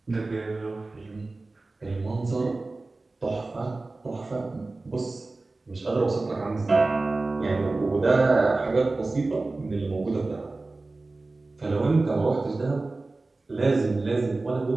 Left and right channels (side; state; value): left; quieter; 3.3 dB